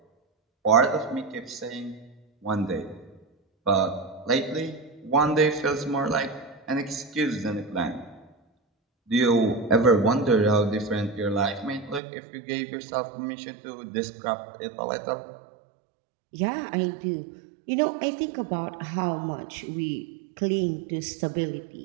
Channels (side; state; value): left; drops out; at 12.0 s